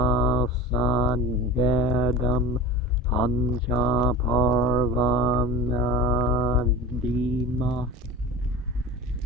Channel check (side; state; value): both; normal; correlation 0.35